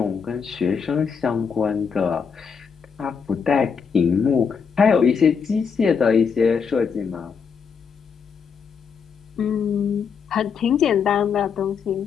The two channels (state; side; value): quieter; right; 6.2 dB